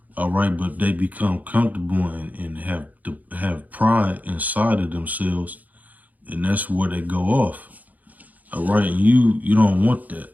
All right. But they become comfortable and have pride inside of themselves. And that's where they go off. All right. And you don't want that,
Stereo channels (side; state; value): left; late; 0.079 ms